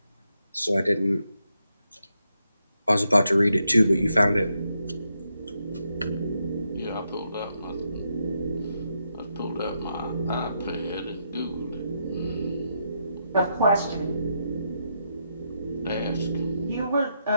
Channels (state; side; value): inverted; both; correlation -0.82